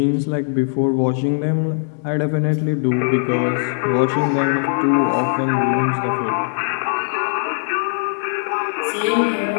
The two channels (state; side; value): silent; right; 66 dB below the other